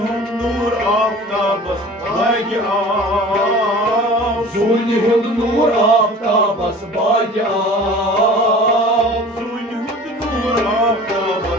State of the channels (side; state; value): both; normal; correlation 0.42